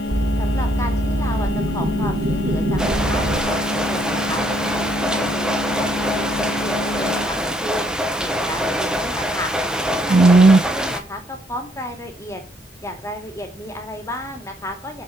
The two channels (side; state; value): both; normal; correlation 0.70